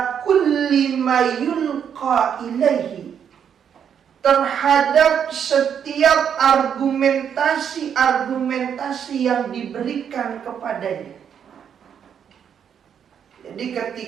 kulli ma yulqa ilaihi, terhadap setiap argumentasi yang diberikan kepadanya. Jadi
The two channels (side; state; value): left; quieter; 8.1 dB